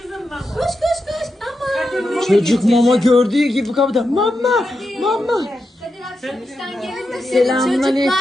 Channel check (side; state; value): both; normal; correlation 0.87